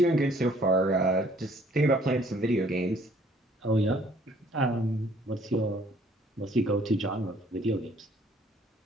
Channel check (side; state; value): both; normal; correlation 0.60